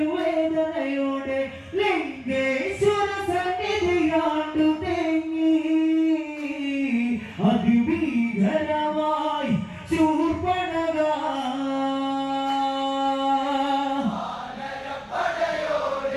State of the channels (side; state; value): both; identical; correlation 1.00